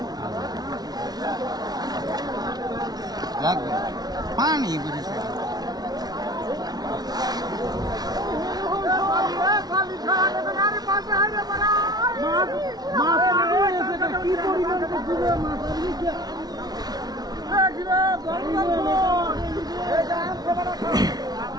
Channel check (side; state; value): left; late; 0.19 ms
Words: লাগবে পানি বুঝেছে